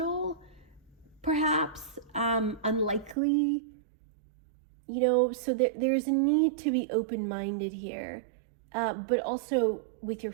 perhaps, unlikely, so there's a need to be open-minded here, but also with your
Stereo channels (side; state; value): left; drops out; at 3.2 s